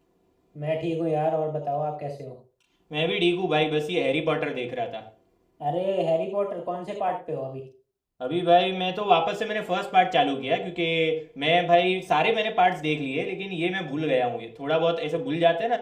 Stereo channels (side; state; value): both; identical; correlation 1.00